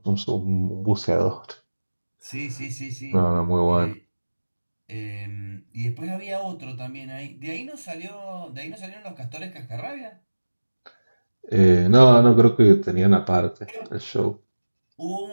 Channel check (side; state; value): both; inverted; correlation -1.00